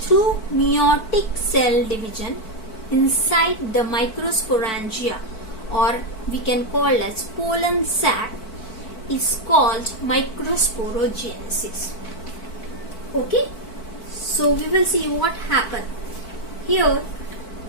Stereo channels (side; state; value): right; late; 4.5 ms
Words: through meiotic cell division inside the microsporangia, or we can call as pollen sac, is called microsporogenesis. Okay, so we will see what happened here.